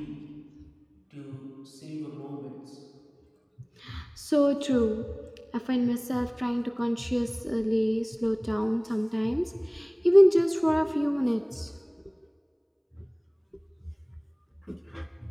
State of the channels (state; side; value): identical; both; correlation 1.00